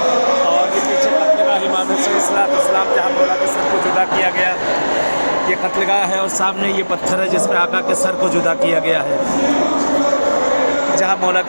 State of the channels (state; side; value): inverted; both; correlation -1.00